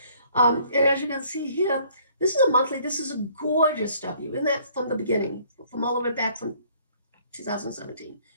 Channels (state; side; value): inverted; both; correlation -0.60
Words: And as you can see here, this is a monthly, this is a gorgeous W, isn't that from the beginning, from all the way back from 2017,